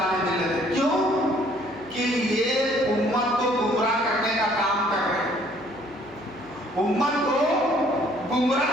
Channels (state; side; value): noise; left; hum, 25 dB below the sound